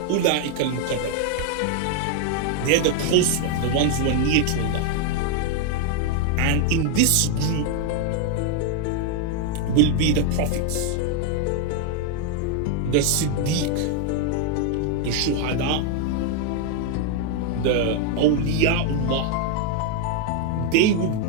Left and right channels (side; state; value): both; different; correlation 0.00